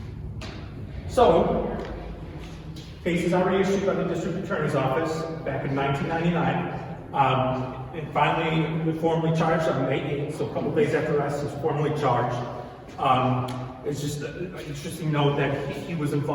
So, case is already issued by the district attorney's office back in 1999. And finally, we formally charged on May 8th, so a couple days after arrest, he was formally charged. It's just an interesting note that he was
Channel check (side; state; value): both; identical; correlation 1.00